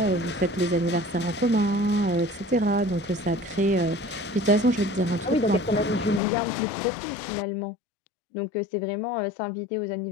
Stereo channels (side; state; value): right; drops out; at 6.2 s